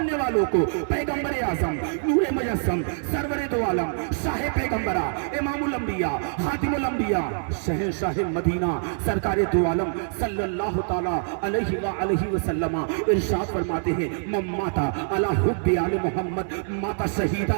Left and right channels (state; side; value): silent; left; 62 dB below the other